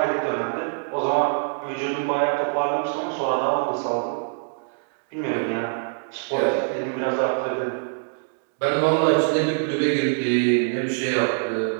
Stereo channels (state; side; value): silent; left; digital silence